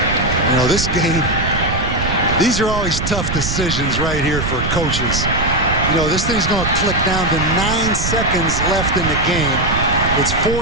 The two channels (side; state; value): right; noise; rumble, 3 dB below the sound